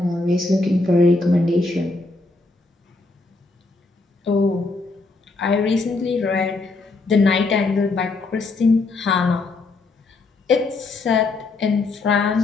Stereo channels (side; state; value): right; quieter; 3.4 dB